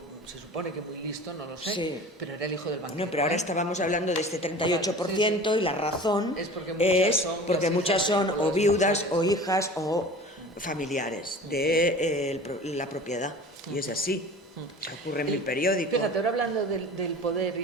se supone que muy listo, no lo sé, sí, pero era el hijo del banquero. No, pero ahora estábamos hablando de este 38%, y la razón es porque muchas son o viudas o hijas o familiares de la propiedad, y es así. Ocurre en el periódico. Fíjate, ahora hablando del poder,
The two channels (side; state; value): both; normal; correlation 0.40